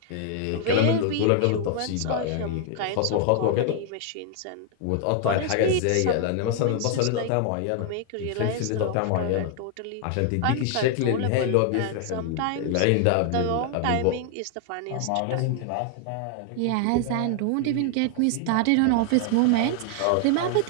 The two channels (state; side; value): different; both; correlation 0.00